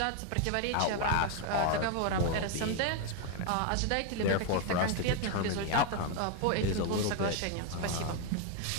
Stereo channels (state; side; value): different; both; correlation 0.01